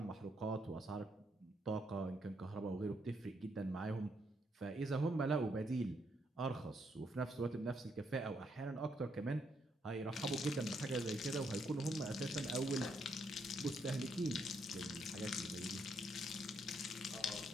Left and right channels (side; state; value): both; normal; correlation 0.75